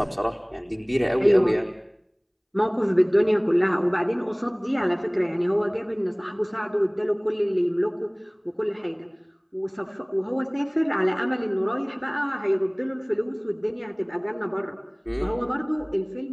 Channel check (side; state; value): both; identical; correlation 1.00